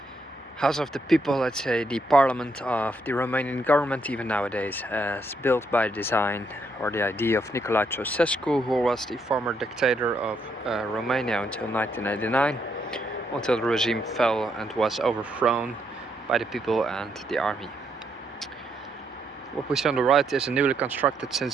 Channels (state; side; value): normal; both; correlation 0.76